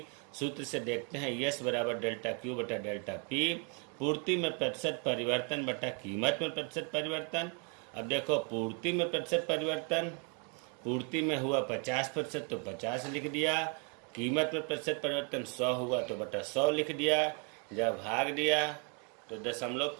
सूत्र से देखते हैं, यस बराबर डेल्टा क्यू बटा डेल्टा पी, पूर्ति में प्रतिशत परिवर्तन बटा कीमत में प्रतिशत परिवर्तन। अब देखो पूर्ति में प्रतिशत परिवर्तन, पूर्ति में हुआ 50% तो 50 लिख दिया, कीमत में प्रतिशत परिवर्तन 100 हुआ तो बटा 100 लिख दिया। जब भाग दिया तो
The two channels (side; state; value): left; quieter; 37.6 dB